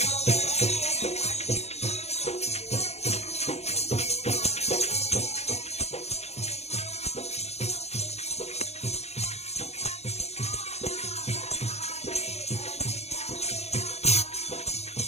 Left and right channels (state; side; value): late; right; 0.31 ms